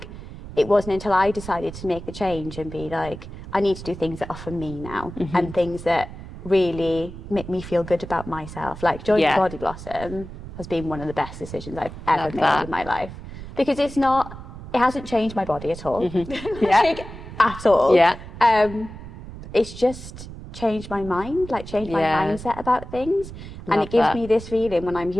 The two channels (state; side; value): noise; right; rumble, 13 dB below the sound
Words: it wasn't until I decided to make the change and be like, I need to do things that are for me now, and things that really make me feel good about myself. Like joining BodiBlossom has been one of the best decisions I've ever made in my life, because it hasn't changed my body at all. Like, at all. It's just changed my mind, like changed my mindset about things. And it gives me this feeling when I'm